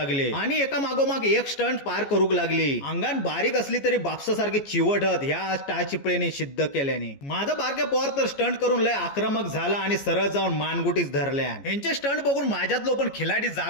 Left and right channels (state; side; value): late; right; 14 ms